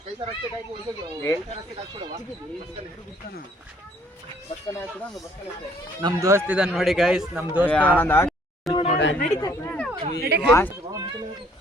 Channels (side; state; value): both; normal; correlation 0.62